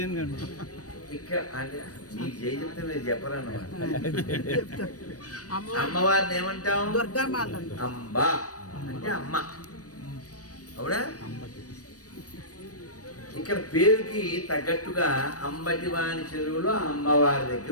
అని ఇక్కడ అంటే మీకు జై చెప్తే మీరు చెప్పరన్నమాట. అమ్మవారిని ఏమంటాం? అంబ అంటే అమ్మ, అవునా? ఇక్కడ పేరుకి తగ్గట్టుగా అంబటివాణి చెరువులో అమ్మవారి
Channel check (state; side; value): late; right; 0.67 ms